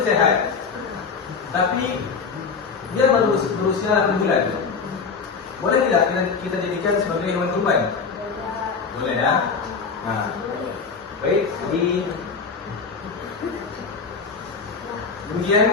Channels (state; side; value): quieter; right; 5.2 dB